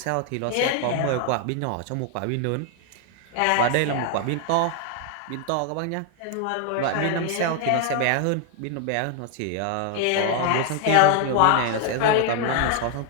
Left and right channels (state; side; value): different; both; correlation 0.00